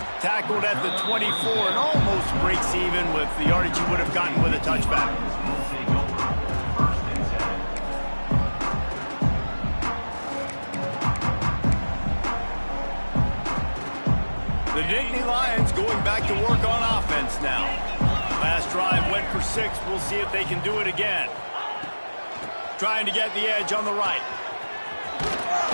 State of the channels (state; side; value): inverted; both; correlation -1.00